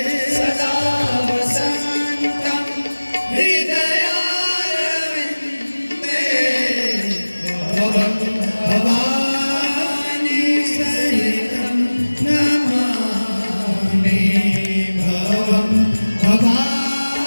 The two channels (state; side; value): inverted; both; correlation -1.00